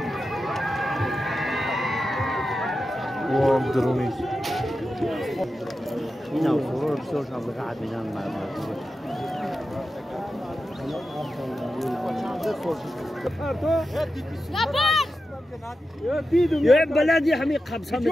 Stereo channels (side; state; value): both; normal; correlation 0.90